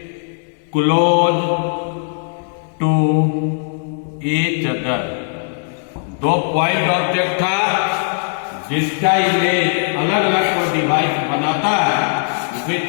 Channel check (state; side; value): silent; right; digital silence